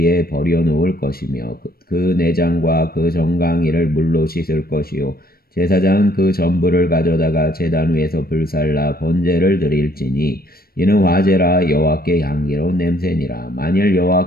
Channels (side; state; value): right; late; 0.44 ms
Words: 버려놓을 것이며 그 내장과 그 정강이를 물로 씻을 것이요 제사장은 그 전부를 가져다가 제단 위에서 불살라 번제를 드릴지니 이는 화제라 여호와께 향기로운 냄새니라. 만일